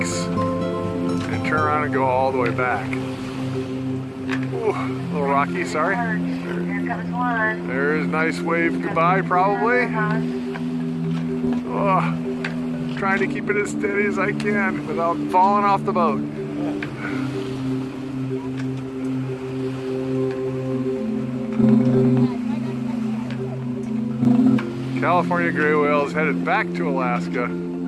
and turn around and go all the way back. Ooh, a little rocky, sorry. Here comes one. There's a nice wave goodbye, probably. Oh. Trying to keep it as steady as I can without falling off the boat. California gray whale is headed back to Alaska.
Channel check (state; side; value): identical; both; correlation 1.00